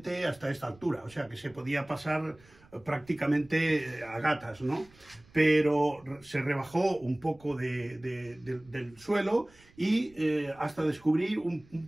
hasta esta altura, o sea que se podía pasar prácticamente a gatas, ¿no? Pero se rebajó un poco del suelo y hasta descubrir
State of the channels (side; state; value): right; noise; rumble, 27 dB below the sound